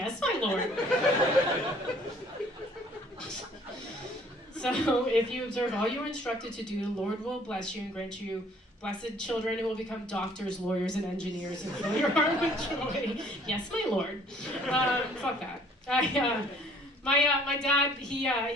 my Lord. So if you observe all you are instructed to do, the Lord will bless you and grant you blessed children who will become doctors, lawyers, and engineers and fill your heart with joy. Yes, my Lord. Fuck that. My dad,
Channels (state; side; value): normal; both; correlation 0.57